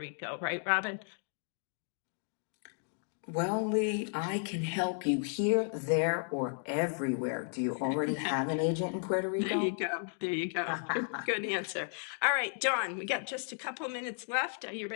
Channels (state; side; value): silent; right; 55 dB below the other